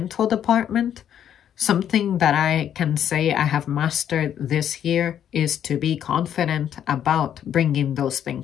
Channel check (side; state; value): right; quieter; 9.7 dB